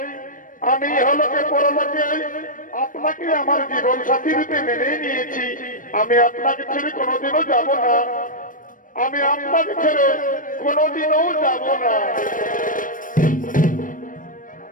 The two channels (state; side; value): late; right; 0.39 ms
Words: আপনাকে আমার জীবন সাথী রূপে মেনে নিয়েছি। আমি আপনাকে ছেড়ে কোনোদিনও যাব না, আমি আপনাকে ছেড়ে কোনোদিনও যাব না।